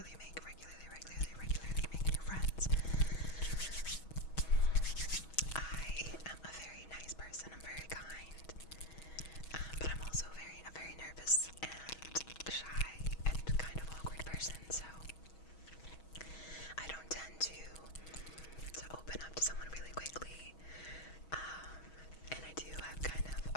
make new friends. I am a very nice person. I'm very kind, but I'm also a very nervous and shy and kind of awkward person. So I don't tend to open up to someone really quickly. And I do have kind of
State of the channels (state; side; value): late; right; 6.2 ms